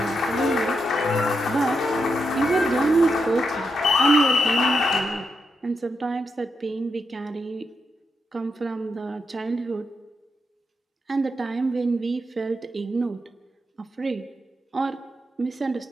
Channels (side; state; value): both; normal; correlation 0.83